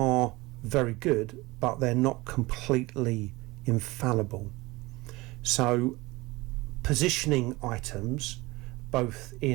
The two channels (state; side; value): quieter; left; 21.6 dB